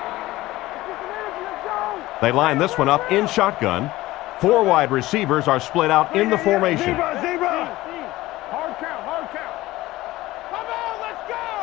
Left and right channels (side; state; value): right; quieter; 17.6 dB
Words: They line this one up in shotgun. 4 wide receivers are split out in the formation. Hard count, hard count. Come on, let's